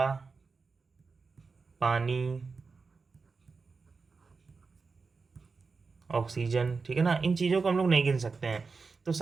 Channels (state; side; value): quieter; left; 4.6 dB